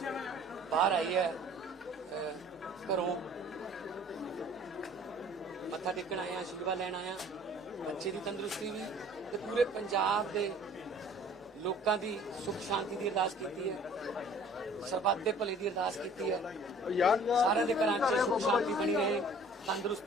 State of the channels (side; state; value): both; normal; correlation 0.51